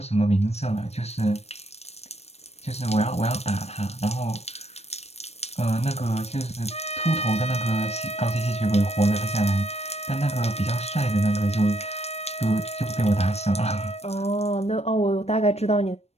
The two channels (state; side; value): late; right; 0.31 ms